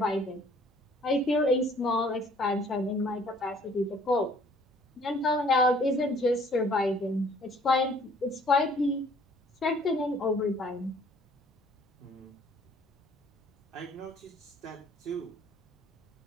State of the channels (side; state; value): both; normal; correlation 0.58